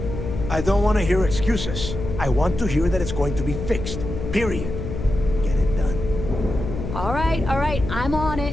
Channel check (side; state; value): left; noise; hum, 6 dB below the sound